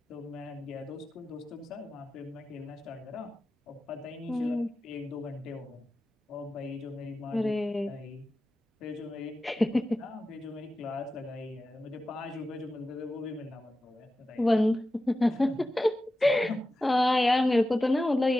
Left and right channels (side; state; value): both; normal; correlation 0.93